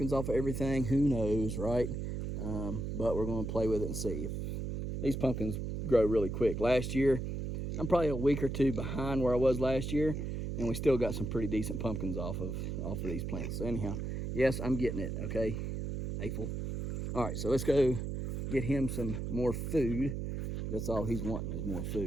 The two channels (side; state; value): right; noise; hum, 4 dB below the sound